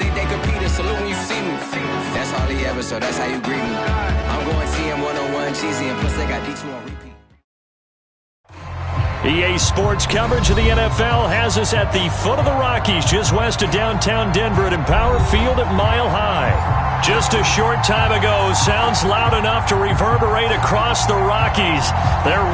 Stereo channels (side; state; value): both; identical; correlation 1.00